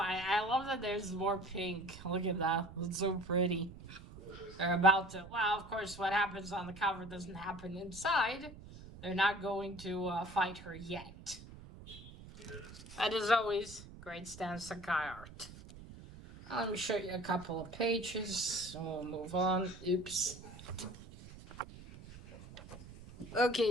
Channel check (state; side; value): noise; right; rumble, 16 dB below the sound